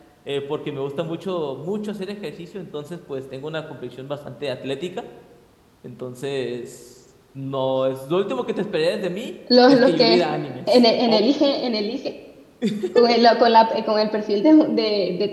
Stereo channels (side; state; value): both; identical; correlation 1.00